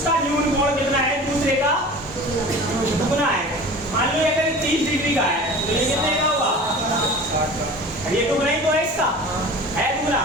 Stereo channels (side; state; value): both; normal; correlation 0.39